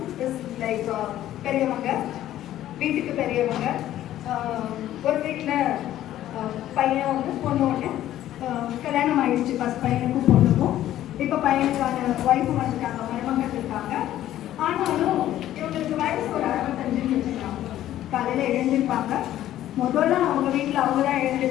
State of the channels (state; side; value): quieter; right; 13.0 dB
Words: is like பெரியவங்க, வீட்டுக்கு பெரியவங்க. ஒரு வீட்டில் பையன் ஒன்று பொண்ணு ஒன்று. கல்யாணம் ஆயிடுச்சு ஃபஸ்ட் பையனுக்கும் பொண்ணுக்கும். இப்போ பையனுக்கான ஒய்ஃபும் வந்துட்டாங்க, மருமகள் இருக்காங்க. ஆனாலும் இவங்களுக்கு வயசு ஒரு 65 வச்சுருக்காங்க. காலையில் எழுந்திருப்பாங்க. முதல்ல அவங்க வீட்டில் அவங்க தான்